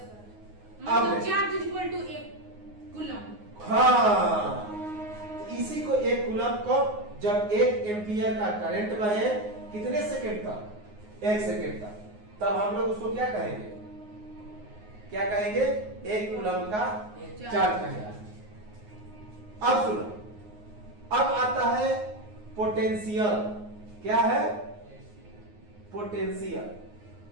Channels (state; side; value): late; left; 9.5 ms